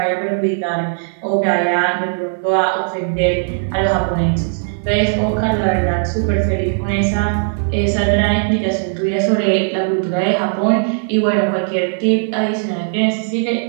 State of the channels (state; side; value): silent; left; 63 dB below the other